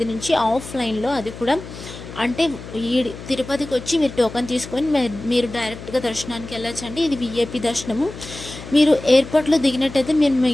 నుంచి ఆఫ్లైన్లో. అది కూడా అంటే ఈ తిరుపతికి వచ్చి మీరు టోకన్ తీసుకొని మీరు డైరెక్ట్గా దర్శనానికి వెళ్ళొచ్చండి. ఇది విఐపి దర్శనము. మీరు ఎయిర్పోర్ట్లో దిగినట్టయితే మేము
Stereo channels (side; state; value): left; noise; hum, 13 dB below the sound